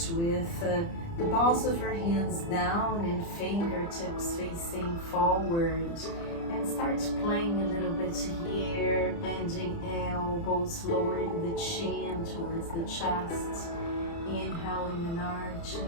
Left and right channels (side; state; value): right; late; 30 ms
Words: with the balls of your hands down and fingertips facing forward, and start playing a little bit here, bending elbows, lowering the chin towards the chest, inhaling and